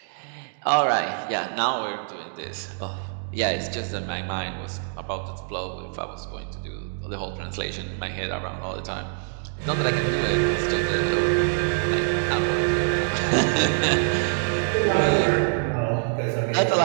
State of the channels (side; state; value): left; silent; digital silence